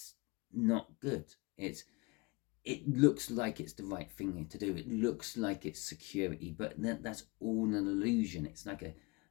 not good. It looks like it's the right thing to do. It looks like it's security, but that's all an illusion. It's like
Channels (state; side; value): quieter; right; 26.5 dB